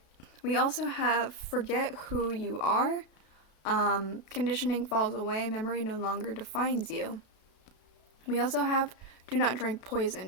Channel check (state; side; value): late; right; 32 ms